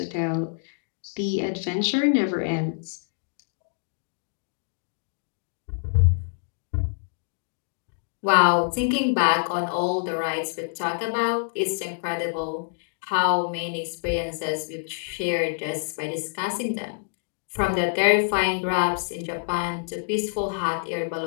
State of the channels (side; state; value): right; silent; digital silence